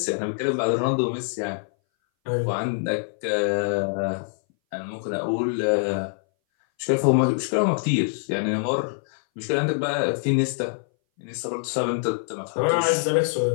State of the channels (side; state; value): right; silent; 60 dB below the other